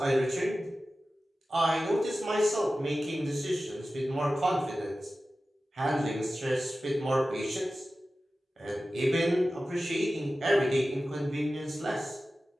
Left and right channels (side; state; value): both; normal; correlation 0.95